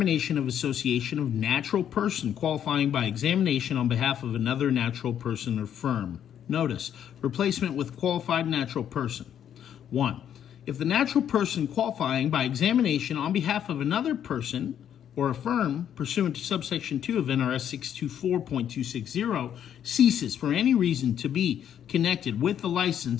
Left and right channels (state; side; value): quieter; right; 9.6 dB